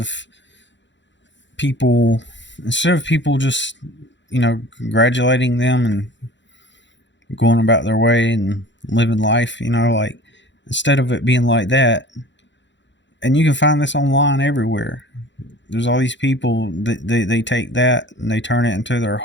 people people just congratulating them and going about their way and living life, like instead of it being like that, and you can find this online everywhere. There's all these people that they take that and they turn it into their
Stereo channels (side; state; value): right; late; 0.53 ms